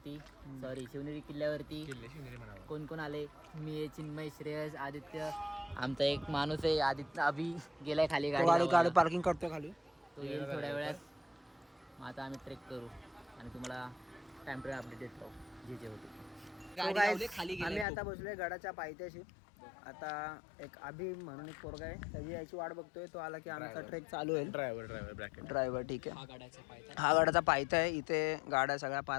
सॉरी शिवनेरी किल्ल्यावरती. कोण कोण आले? मी, चिन्मय, श्रेयस, आदित्य, आमचा एक माणूस आहे आदित्य, अभि गेलाय खाली गाडी पार्किंग करतोय खाली. तो येईल थोड्या वेळात. मग आता आम्ही ट्रेक करू आणि तुम्हाला टाइम टू अपडेट देतो जे होते. आम्ही आता बसलोय गडाच्या पायथ्याशी. आता एक अभि म्हणून एक पोरगा आहे, त्याची याची वाट बघतोय. तो आला की आमचा ट्रेक चालू होईल. ड्रायव्हर ठीक आहे. हा गडाचा पायथा आहे. इथे गाड्या सगळ्या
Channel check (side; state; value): right; drops out; at 17.9 s